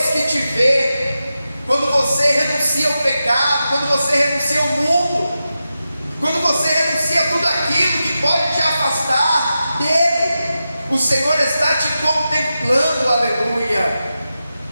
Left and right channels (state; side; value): inverted; both; correlation -0.91